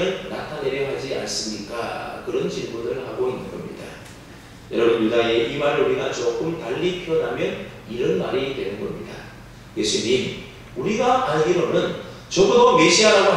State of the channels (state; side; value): identical; both; correlation 1.00